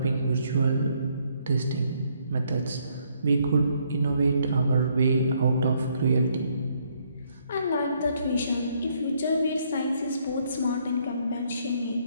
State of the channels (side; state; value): both; inverted; correlation -0.70